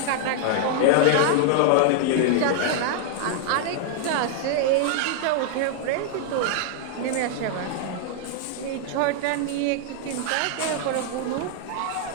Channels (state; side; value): different; both; correlation 0.00